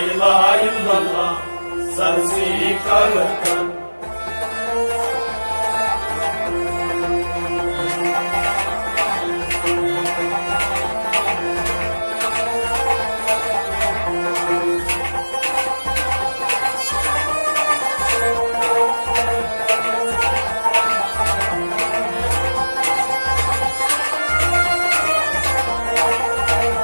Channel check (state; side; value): inverted; both; correlation -1.00